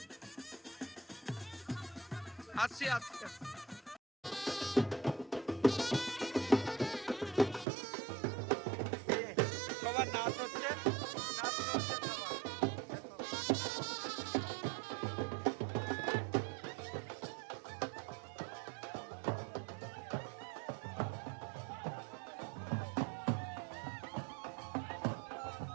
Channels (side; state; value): left; drops out; at 7.7 s